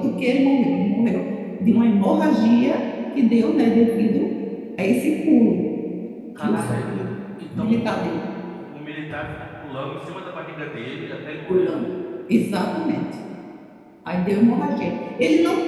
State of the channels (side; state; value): both; identical; correlation 1.00